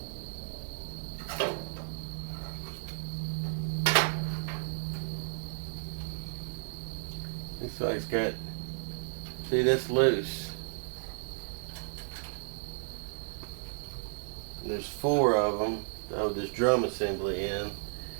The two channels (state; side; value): silent; left; digital silence